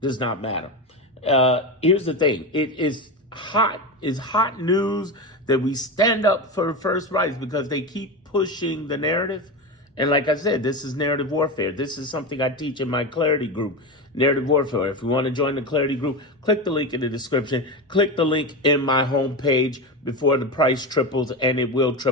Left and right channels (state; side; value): normal; both; correlation 0.20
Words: does not matter. Here's the thing. It is hot. It's hot news that we stand up for first rights because they keep pushing the narrative. And like I said, this is narrative warfare. This is something I teach in my Clarity group, narrative warfare. If you want to join the Clarity group, click the link in the description. Click the link in my homepage before the price triples, and it will